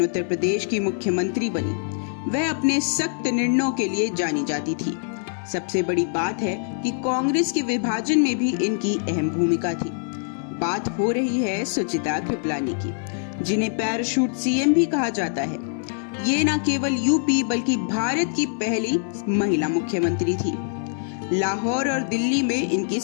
उत्तर प्रदेश की मुख्यमंत्री बनी। वह अपने सख्त निर्णयों के लिए जानी जाती थी। सबसे बड़ी बात है कि कांग्रेस के विभाजन में भी इनकी अहम भूमिका थी। बात हो रही है सुचिता कृपलानी की, जिन्हें पैराशूट सीएम भी कहा जाता है। ये न केवल यूपी बल्कि भारत की पहली महिला मुख्यमंत्री थी। लाहौर और दिल्ली में इनकी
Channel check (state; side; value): silent; right; 59 dB below the other